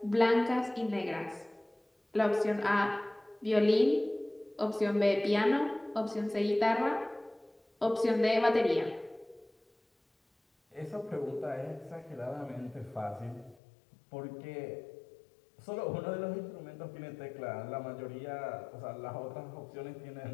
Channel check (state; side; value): drops out; right; at 13.6 s